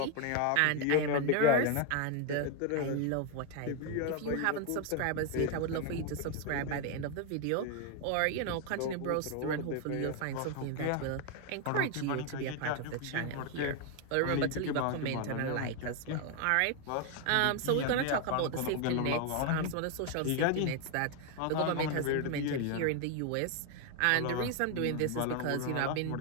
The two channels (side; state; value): both; different; correlation 0.01